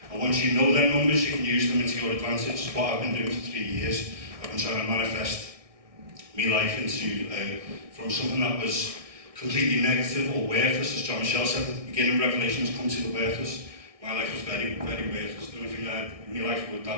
And once you know them numbers, you can use them into your advantage. It's what I've been doing for 3 years. I've been trying to manifest my life into from something that was completely negative or worthless, as John Michell said at the beginning. Revelations come to the worthless. My life was very, very worthless. The only thing I had in my life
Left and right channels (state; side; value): late; left; 1.6 ms